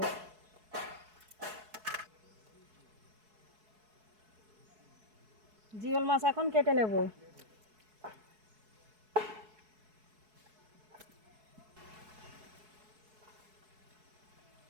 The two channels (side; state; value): left; late; 4.7 ms